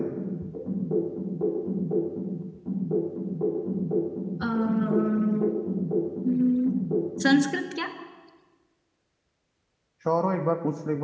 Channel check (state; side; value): identical; both; correlation 1.00